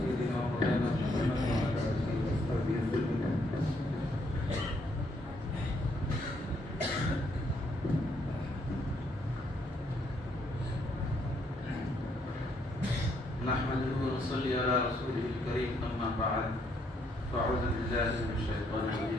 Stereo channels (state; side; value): normal; both; correlation 0.72